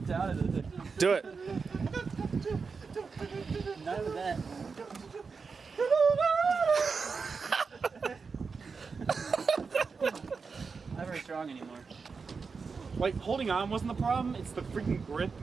out of it. Do it. None of that. Not very strong anymore. Like holding on wasn't the problem. It's the freaking grip,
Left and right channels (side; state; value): left; quieter; 5.0 dB